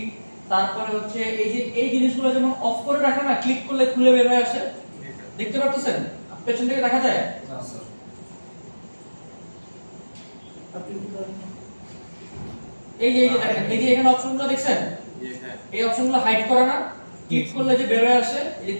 তারপরে হচ্ছে এই যে এই জিনিসগুলো যেমন অফ করে রাখা না, ক্লিক করলে খুলে বের হয়ে আসে, দেখতে পাচ্ছেন পেছন থেকে দেখা যায়। এই যে দেখেন, এই যে এখানে অপশনগুলো দেখছেন, এই অপশনগুলো হাইড করা না, ক্লিক করলে যে বের হয়ে আসে, এই যে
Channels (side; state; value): both; inverted; correlation -1.00